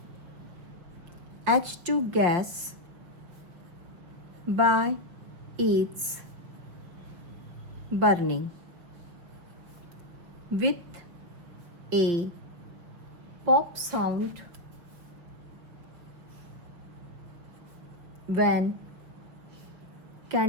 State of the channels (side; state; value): left; late; 5.8 ms